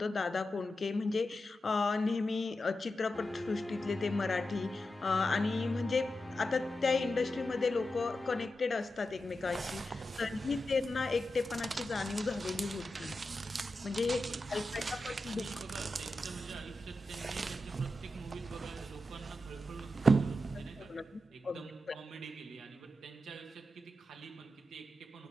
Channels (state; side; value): normal; both; correlation 0.90